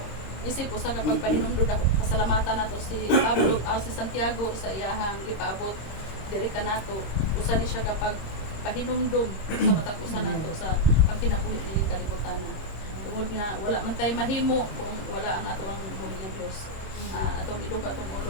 isip usa ka pagpahinumdod ako pasalamatan nato si Pablo si Santiago sa iyahang gipaabot diri kanato usa ni siya kapag pahinumdom sa matag usa nato sa pagkinabuhi ni kalibutan. Tungod nga wala man tay mahimo kung wala ang ato ang buhi nga Dios. Atong iduka atong ulo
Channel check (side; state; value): right; late; 26 ms